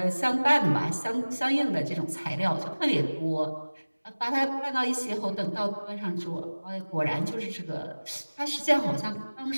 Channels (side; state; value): both; inverted; correlation -1.00